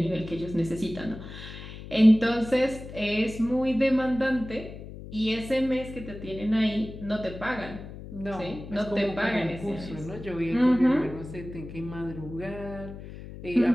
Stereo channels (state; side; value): noise; left; hum, 13 dB below the sound